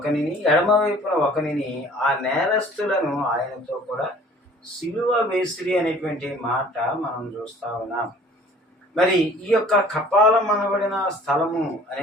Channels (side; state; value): both; normal; correlation 0.51